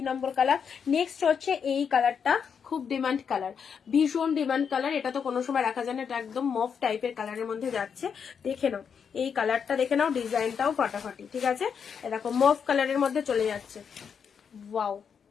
নম্বর কালার। নেক্সট হচ্ছে এই কালারটা, খুব ডিমান্ড কালার, ভীষণ ডিমান্ড কালার। এটা তো কোনো সময় রাখা যায় না, এটা একদম মফ টাইপের কালারের মধ্যে যাচ্ছে। দেখে নাও এই কালারটা, দেখে নাও, ডিজাইনটাও ফাটাফাটি। ঠিক আছে, দেখো মফ কালারের মধ্যে চলে যাচ্ছে। Wow,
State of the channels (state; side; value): quieter; right; 6.9 dB